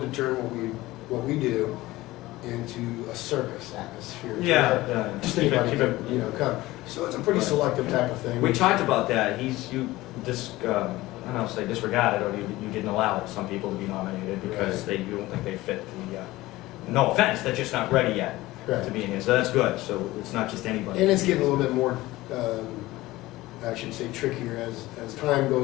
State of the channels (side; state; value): right; quieter; 18.2 dB